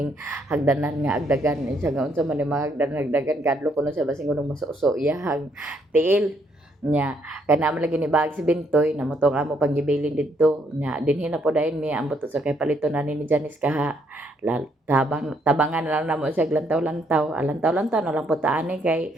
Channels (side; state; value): both; normal; correlation 0.71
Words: hagdanan nga agdagan siya nga unsa man ni mga hagdagan kadlok kuno siya basing kunong masuso iyahang tiil nya kana man lagi ni bag si Bintoy na motong amo panggibilin didto nya dinhi na po dayon mi ambot sa kay paliton na ni Janice kaha tabangan na lang namo siya lantaw-lantaw na lang po taani kay